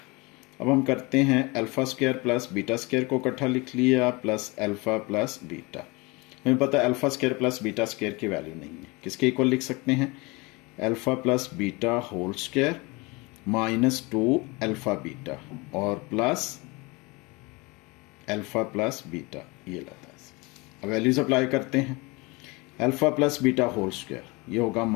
अब हम करते हैं alpha square plus beta square को इकट्ठा लिख लिया प्लस अल्फा प्लस बीटा। हमें पता है alpha square plus beta square की वैल्यू नहीं है, किसके इक्वल लिख सकते हैं, alpha plus beta whole square minus 2 alpha beta और प्लस अल्फा प्लस बीटा, ये लाता है। अब वैल्यूज अप्लाई करते हैं, alpha plus beta whole square ये होगा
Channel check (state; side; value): quieter; right; 25.6 dB